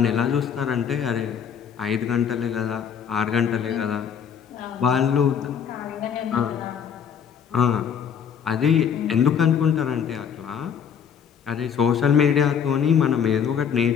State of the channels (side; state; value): right; quieter; 7.7 dB